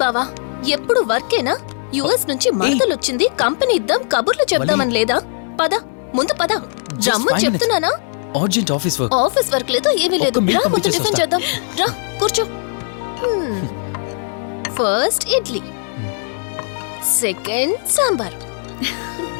బావా, ఎప్పుడు వర్కేనా? యుఎస్ నుంచి మరదలొచ్చింది, కంపెనీ ఇద్దాం, కబుర్లు చెప్దామని లేదా? పద ముందు పద. రమ్ము చెప్తున్నానా? Urgent office work. Office work లేదు, ఏమీ లేదు. ఒక్క మీల్ రా ముందు పంపించేసి టిఫిన్ వస్తా. చేద్దాం. రా కూర్చో. First idli, second sambar.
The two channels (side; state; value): right; silent; digital silence